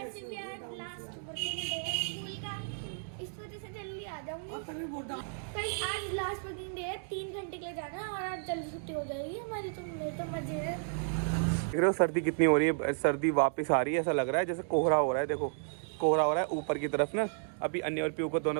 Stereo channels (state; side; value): silent; left; digital silence